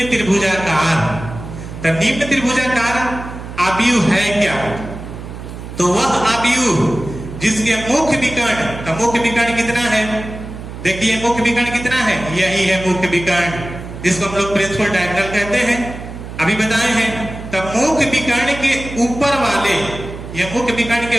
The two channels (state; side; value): noise; right; hum, 11 dB below the sound